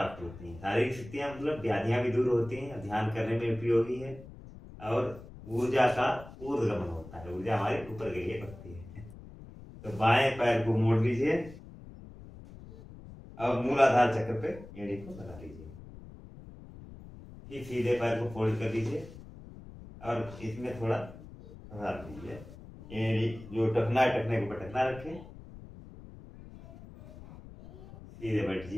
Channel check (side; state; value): left; noise; rumble, 16 dB below the sound